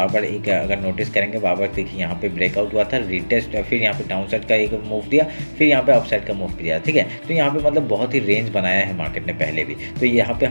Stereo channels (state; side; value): inverted; both; correlation -1.00